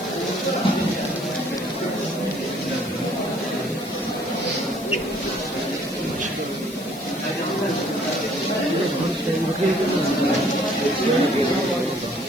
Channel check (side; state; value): left; noise; hiss, 16 dB below the sound